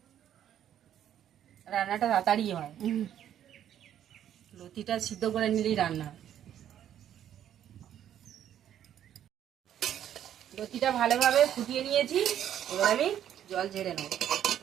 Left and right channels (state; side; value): quieter; left; 10.5 dB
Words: রান্নাটা তাড়াতাড়ি হয়, লতিটা সিদ্ধ করে নিলেই রান্না হয়। লতিটা ভালোভাবে ফুটিয়ে নিয়েছি, এবার আমি জল ঝেড়ে নেব।